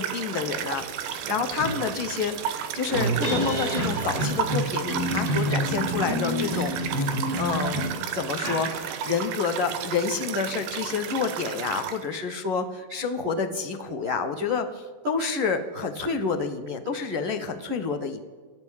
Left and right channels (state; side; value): late; left; 14 ms